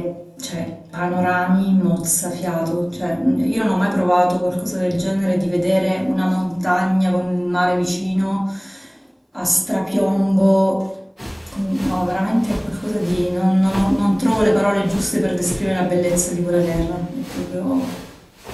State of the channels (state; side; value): identical; both; correlation 1.00